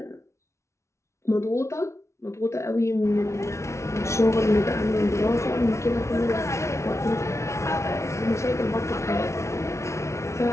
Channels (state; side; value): late; right; 0.13 ms